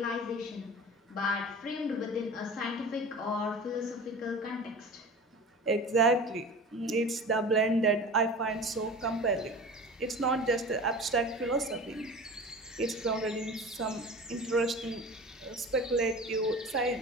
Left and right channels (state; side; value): normal; both; correlation 0.36